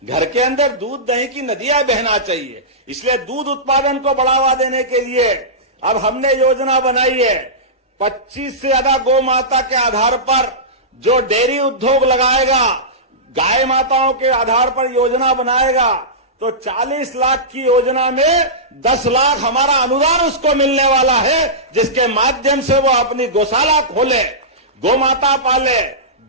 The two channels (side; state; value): both; normal; correlation -0.16